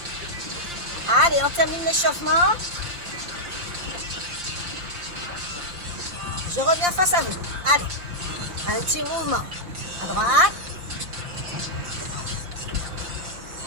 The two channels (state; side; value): late; left; 5.7 ms